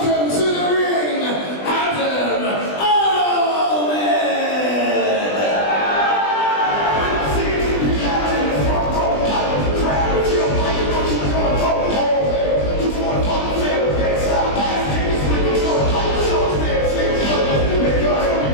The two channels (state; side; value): late; right; 20 ms